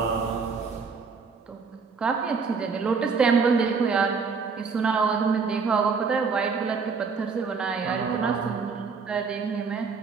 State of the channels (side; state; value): left; quieter; 5.2 dB